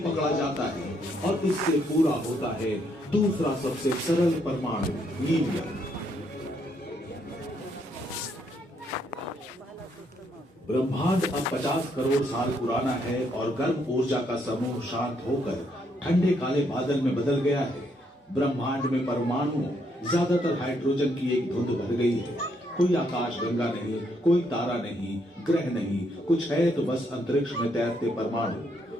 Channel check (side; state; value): both; normal; correlation 0.73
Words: जाता है और इससे पूरा होता है दूसरा सबसे सरल परमाणु, हीलियम। ब्रह्मांड अब 50 करोड़ साल पुराना है और गर्म ऊर्जा का समूह शांत होकर ठंडे काले बादल में बदल गया है। ब्रह्मांड में परमाणु ज्यादातर हाइड्रोजन की एक धुंध भर गई है। कोई आकाश गंगा नहीं, कोई तारा नहीं, ग्रह नहीं, कुछ है तो बस अंतरिक्ष में तैरते